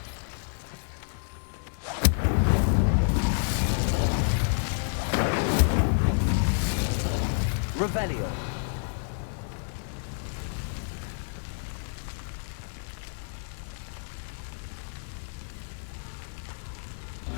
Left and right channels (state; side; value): silent; right; digital silence